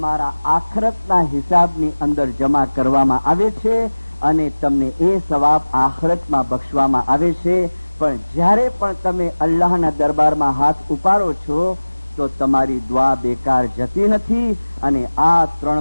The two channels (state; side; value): inverted; both; correlation -1.00